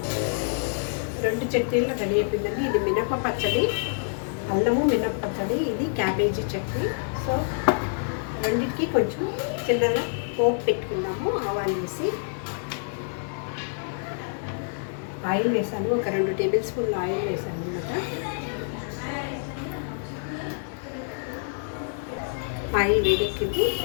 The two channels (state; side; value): silent; right; digital silence